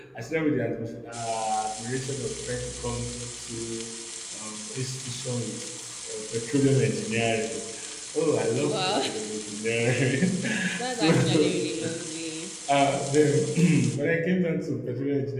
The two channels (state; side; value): identical; both; correlation 1.00